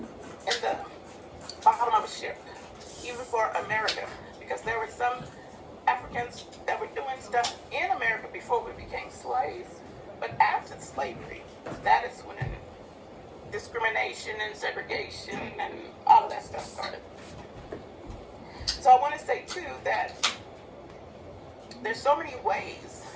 the bottom of a ship, even for America, because there were some Africans that were doing stuff in America before we became slaves. But after slavery, that is when discrimination and segregation and all of that stuff started. So I want to say too that there's so many ways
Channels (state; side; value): identical; both; correlation 1.00